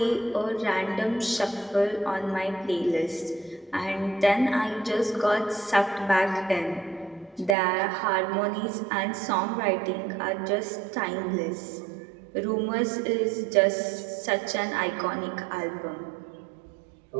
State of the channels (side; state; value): left; drops out; at 7.6 s